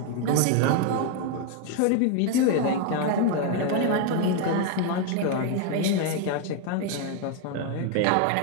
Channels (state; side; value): different; both; correlation 0.01